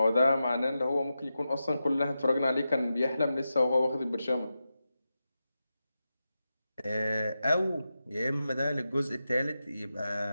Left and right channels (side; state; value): both; inverted; correlation -0.91